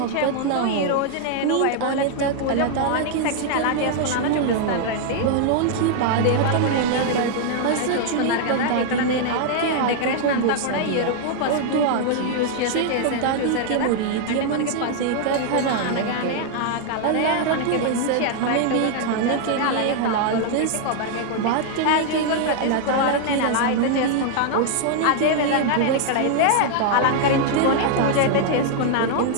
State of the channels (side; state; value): both; different; correlation 0.00